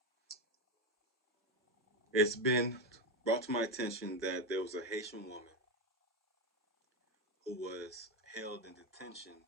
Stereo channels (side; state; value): both; normal; correlation 0.11